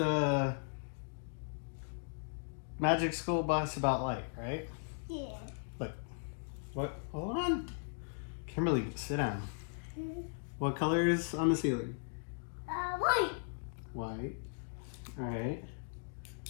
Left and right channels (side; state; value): right; silent; digital silence